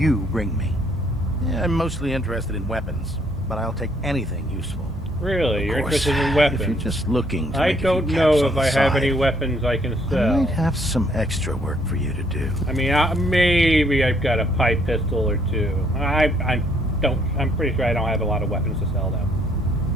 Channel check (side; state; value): both; normal; correlation 0.67